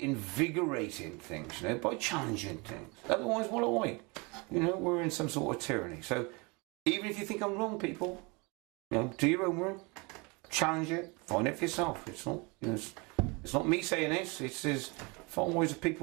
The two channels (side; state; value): left; quieter; 28.3 dB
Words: things, you know, by challenging things. Otherwise, what are we? You know, we're in some sort of tyranny. So even if you think I'm wrong, people, you know, do your own work, challenge it, find it for yourself. It's not, you know, it's not me saying this. It's far wiser